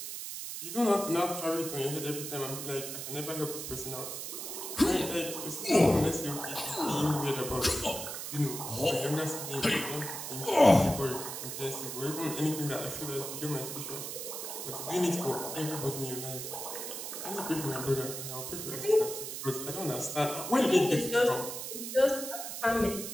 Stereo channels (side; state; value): right; noise; hiss, 6 dB below the sound